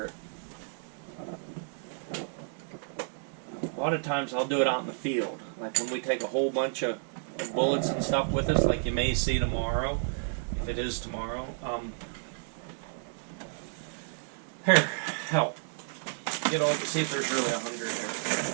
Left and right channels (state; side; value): silent; left; digital silence